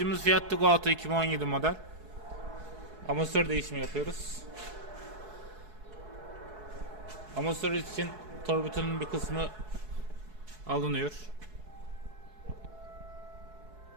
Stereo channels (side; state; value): left; late; 4.7 ms